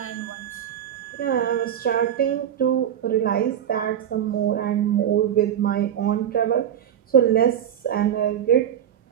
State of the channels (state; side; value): quieter; left; 9.8 dB